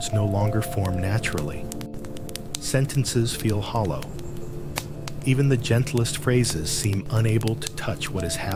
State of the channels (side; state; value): left; noise; hum, 24 dB below the sound